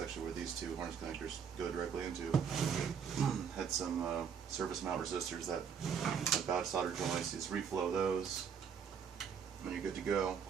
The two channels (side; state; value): left; quieter; 7.1 dB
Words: where these 2 harness connectors go directly into, had some surface mount resistors that had bad solder joints. You just reflow those, and you're good to go. Of